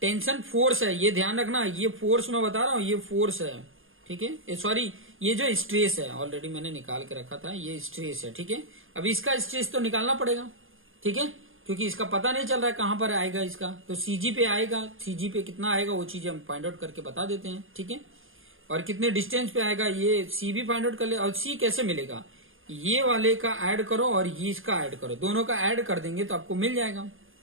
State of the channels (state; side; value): late; left; 0.59 ms